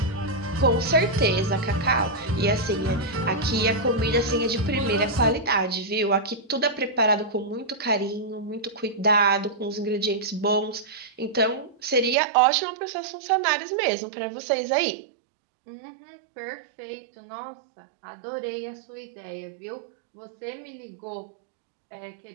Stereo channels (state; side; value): drops out; left; at 12.2 s